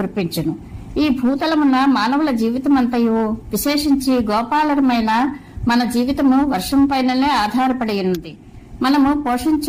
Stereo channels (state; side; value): identical; both; correlation 1.00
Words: ఈ భూతలమున మానవుల జీవితమంతయు, విశేషించి గోపాలరమైన మన జీవితము వర్షం పైననే ఆధారపడి ఉన్నది. మనము